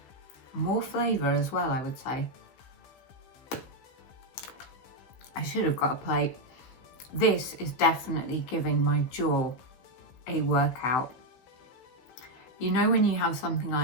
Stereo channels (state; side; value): late; right; 16 ms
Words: More flavour as well, I would say. I should have got a plate. This is definitely giving my jaw a workout. You know when you have something